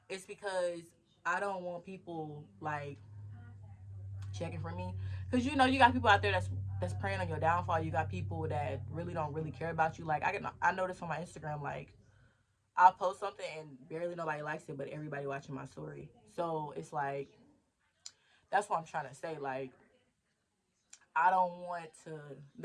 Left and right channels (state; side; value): identical; both; correlation 1.00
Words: It's because I don't want people like checking for me. Cause you know you got people out there that's preying on your downfall. You got people that don't really care about you. Like I noticed on my Instagram like I'll post something and barely nobody likes it, but everybody watching my story. So it's like that's what I'm trying to say. Like I don't want to.